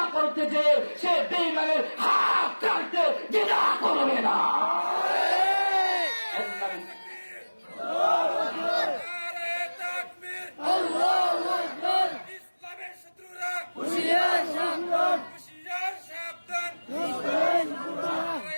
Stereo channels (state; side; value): inverted; both; correlation -1.00